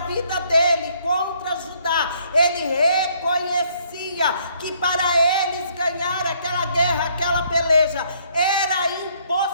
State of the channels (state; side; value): inverted; both; correlation -0.66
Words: dele, contra Judá, ele reconhecia dizia que para eles ganhar aquela guerra, aquela peleja, era